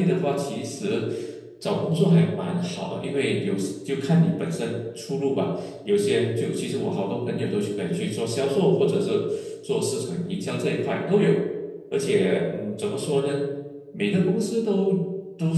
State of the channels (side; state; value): both; identical; correlation 1.00